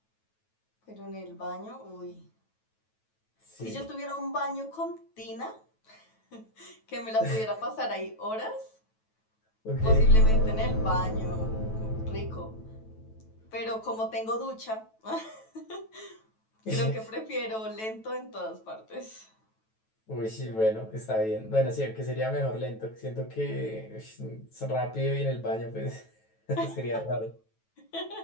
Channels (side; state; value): right; late; 9.2 ms